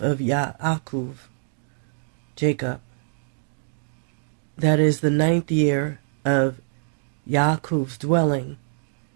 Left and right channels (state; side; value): silent; left; digital silence